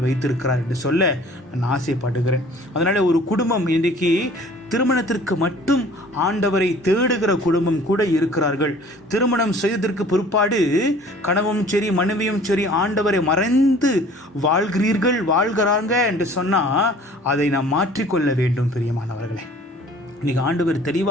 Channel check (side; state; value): both; normal; correlation 0.50